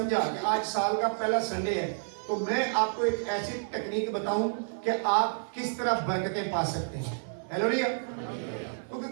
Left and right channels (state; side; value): silent; left; 58 dB below the other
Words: कि आज साल का पहला संडे है, तो मैं आपको एक ऐसी टेक्निक बताऊं कि आप किस तरह बरकतें पा सकते हैं। हालेलुया।